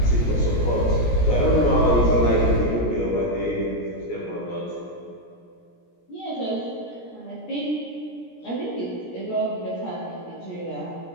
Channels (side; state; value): right; late; 17 ms